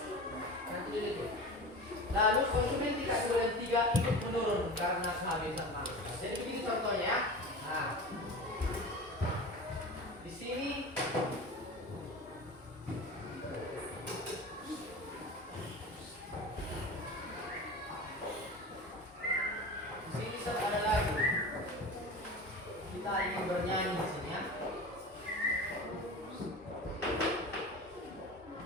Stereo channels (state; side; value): normal; both; correlation 0.32